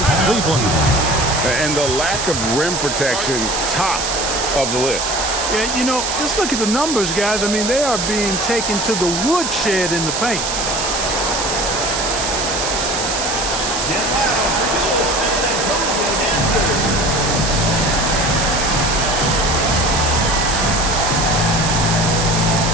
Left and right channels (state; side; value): noise; right; hiss, 2 dB below the sound